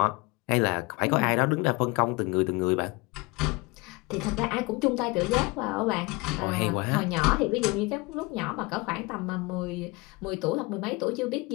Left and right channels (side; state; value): right; quieter; 25.4 dB